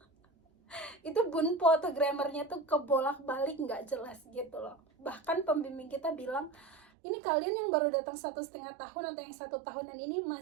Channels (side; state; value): left; drops out; at 6.9 s